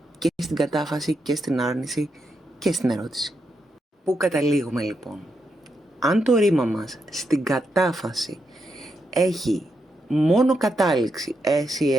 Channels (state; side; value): normal; both; correlation 0.83